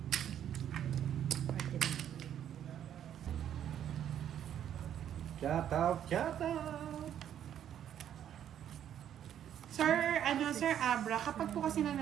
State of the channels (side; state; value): left; quieter; 10.1 dB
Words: Shout out, shout out. Sir Abra, kapag po kasi